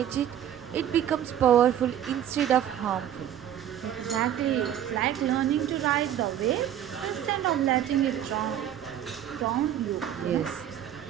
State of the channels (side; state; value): left; quieter; 10.6 dB